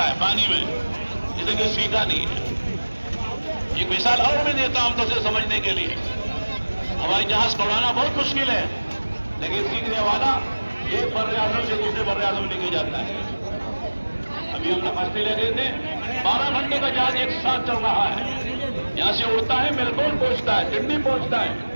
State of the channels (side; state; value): both; inverted; correlation -1.00